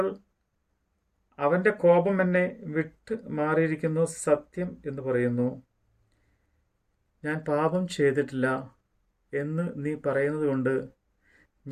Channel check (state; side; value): identical; both; correlation 1.00